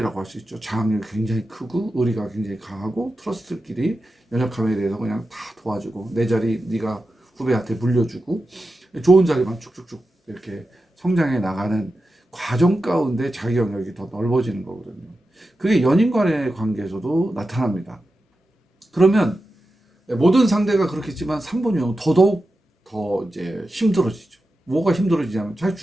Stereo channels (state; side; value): normal; both; correlation 0.91